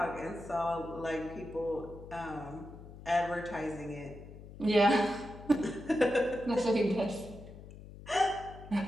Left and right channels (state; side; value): noise; left; hum, 15 dB below the sound